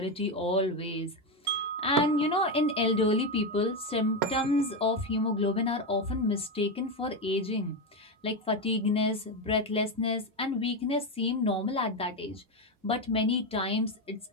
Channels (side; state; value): both; normal; correlation 0.11